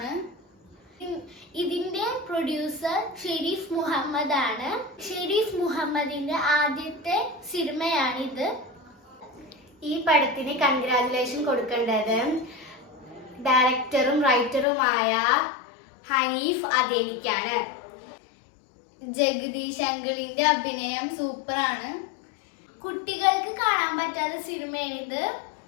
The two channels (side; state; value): right; drops out; at 14.7 s